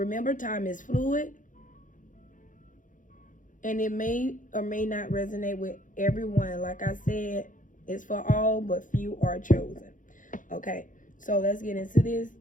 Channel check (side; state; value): right; late; 0.38 ms